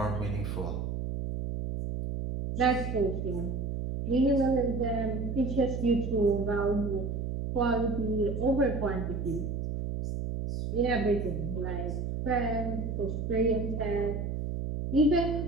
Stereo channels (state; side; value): noise; right; hum, 3 dB below the sound